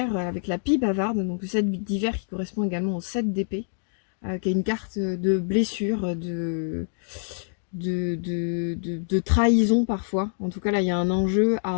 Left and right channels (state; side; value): silent; right; digital silence